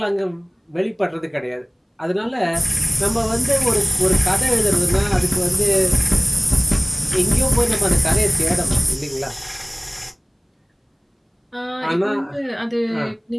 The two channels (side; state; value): both; identical; correlation 1.00